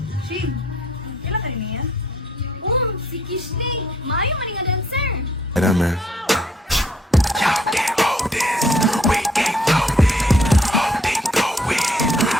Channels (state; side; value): normal; both; correlation 0.64